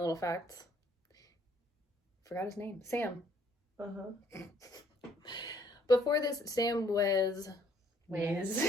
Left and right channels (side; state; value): both; normal; correlation 0.64